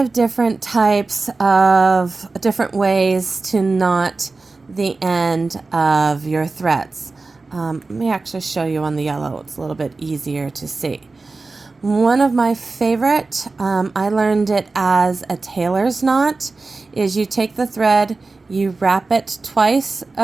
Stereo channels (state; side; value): quieter; left; 3.7 dB